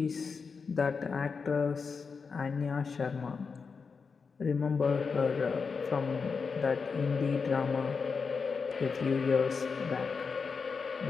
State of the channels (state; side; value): quieter; right; 5.2 dB